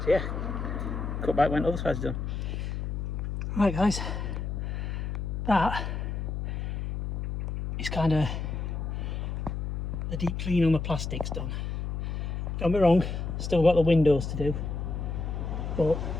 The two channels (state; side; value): noise; left; hum, 3 dB below the sound